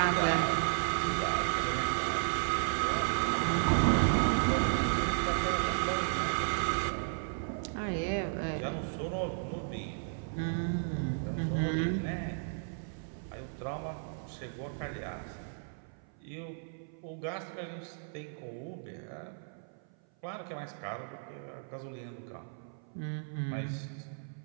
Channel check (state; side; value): silent; left; 55 dB below the other